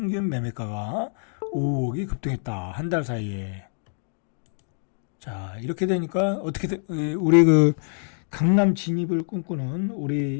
매매가가 5억이 급등했다. 한 달 사이에. 자, 이렇게 되니까 어떻게 우리 그 강남 진입을 꿈꾸는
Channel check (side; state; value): right; silent; digital silence